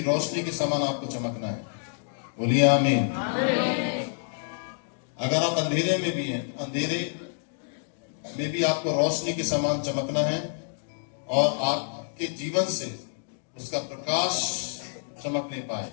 रोशनी के समान आपको चमकना है। बोलिए आमीन। अगर आप अंधेरे में भी हैं, अंधेरे में भी आपको रोशनी के समान चमकना है, और आपके जीवन से उसका प्रकाश चमकने पाए,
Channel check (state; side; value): silent; right; digital silence